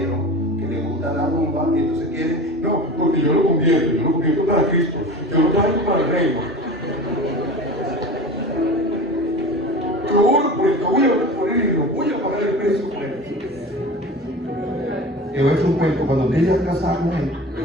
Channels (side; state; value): both; normal; correlation 0.34